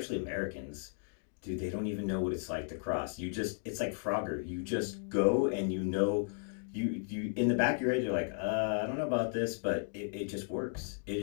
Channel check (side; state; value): right; silent; digital silence